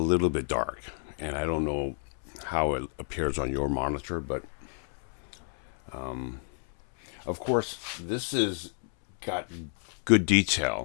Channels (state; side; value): silent; right; 58 dB below the other